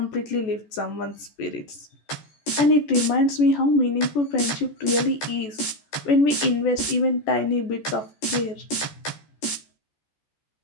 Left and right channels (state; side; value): late; right; 14 ms